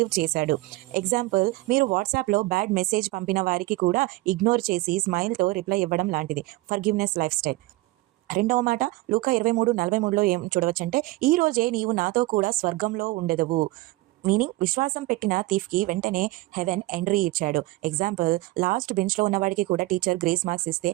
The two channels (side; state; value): left; quieter; 19.9 dB